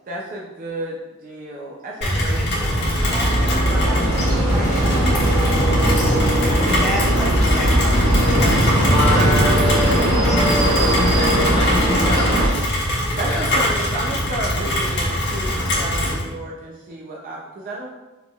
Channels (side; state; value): both; normal; correlation 0.56